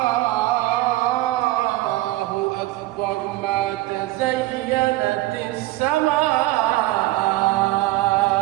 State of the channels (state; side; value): quieter; left; 17.7 dB